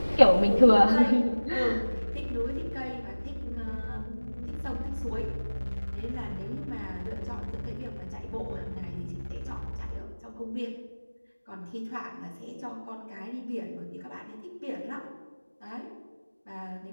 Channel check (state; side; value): inverted; both; correlation -1.00